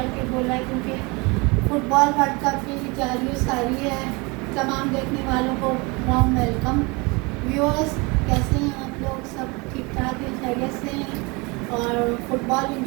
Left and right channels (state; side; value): quieter; left; 27.1 dB